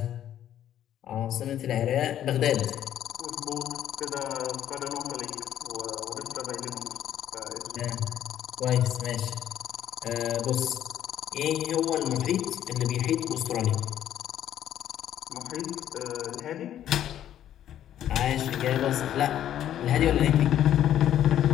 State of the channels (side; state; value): right; quieter; 11.2 dB